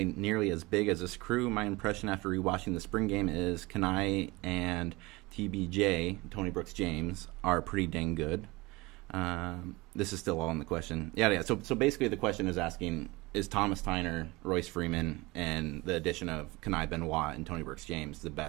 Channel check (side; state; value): left; quieter; 22.7 dB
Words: nearly as big as this crew. My impression after rewatching the spring game is Kenai and TBJ, Tony Brooks James, are pretty dang good. This is still all in the question. Yeah. So basically the question is asking, is Thomas Tyner, Royce Freeman, and the addition of Kenai Benoit and Tony Brooks James the